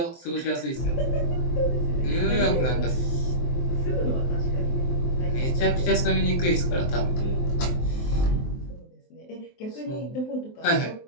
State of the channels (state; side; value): late; right; 23 ms